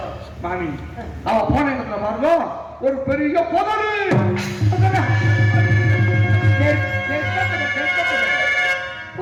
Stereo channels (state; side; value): identical; both; correlation 1.00